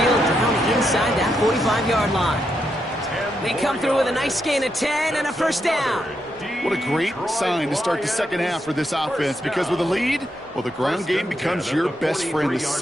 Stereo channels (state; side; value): normal; both; correlation 0.82